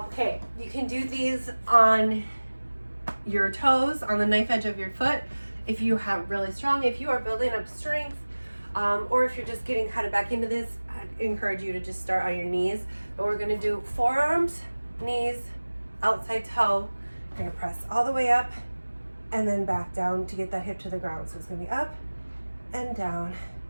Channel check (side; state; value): both; inverted; correlation -1.00